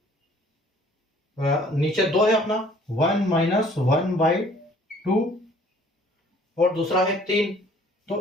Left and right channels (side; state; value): both; normal; correlation 0.56